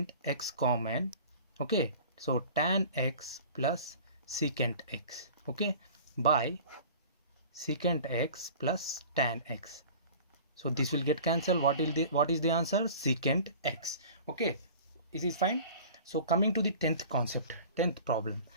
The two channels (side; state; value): both; inverted; correlation -0.43